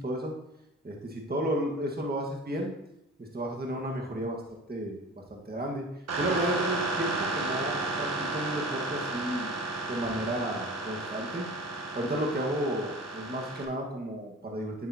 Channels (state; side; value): normal; both; correlation 0.38